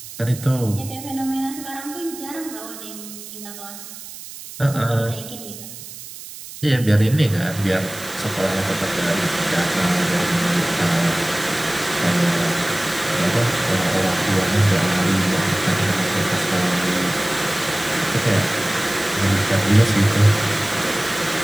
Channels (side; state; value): right; noise; hiss, 13 dB below the sound